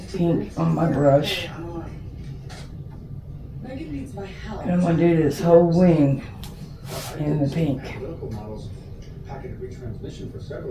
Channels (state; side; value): identical; both; correlation 1.00